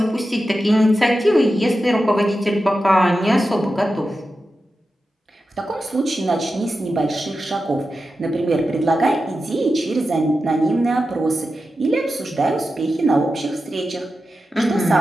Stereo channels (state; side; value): normal; both; correlation 0.91